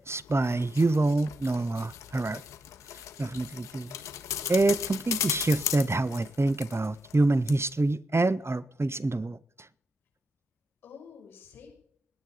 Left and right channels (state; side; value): normal; both; correlation 0.85